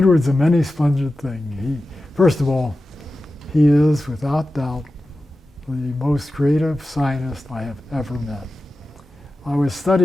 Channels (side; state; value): both; normal; correlation 0.94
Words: a many splendid thing. First of all, he is, without doubt, the most creative scientist I have ever met. I was